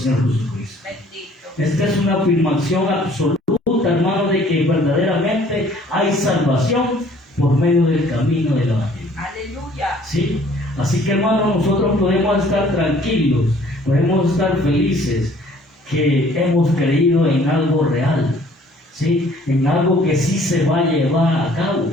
Jesucristo. Bendito. Esta es una afirmación absoluta, hermano, de que verdaderamente hay salvación por medio del camino del Evangelio. Aleluya. ¿Sí? Así que, hermano, nosotros podemos estar tranquilos, podemos estar felices que hemos creído en algo real, ¿sí? En algo que sí se va a llevar a cabo,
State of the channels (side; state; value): both; normal; correlation 0.56